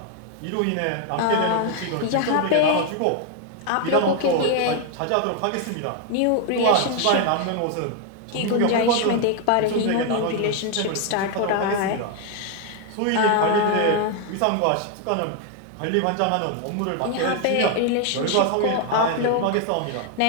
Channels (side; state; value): both; different; correlation 0.00